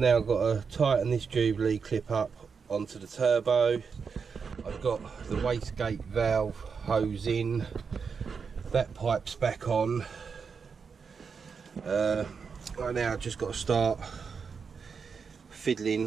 got to tighten this Jubilee clip up onto the turbo. I've got the wastegate valve hose in, that pipe's back on. Right now I've just got to start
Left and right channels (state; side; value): quieter; left; 5.8 dB